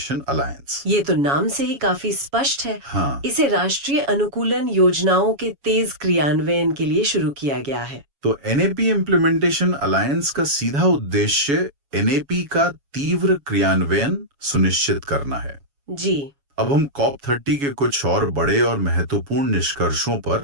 अलायंस। ये तो नाम से ही काफी स्पष्ट है। हाँ, इसे राष्ट्रीय अनुकूलन योजनाओं के तेज क्रियान्वयन के लिए शुरू किया गया है। तो NAP इम्प्लीमेंटेशन अलायंस का सीधा उद्देश्य NAP का तीव्र क्रियान्वयन सुनिश्चित करना है। जी अब हम कॉप 30 के कुछ और बड़े और महत्वपूर्ण निष्कर्षों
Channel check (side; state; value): left; late; 7.2 ms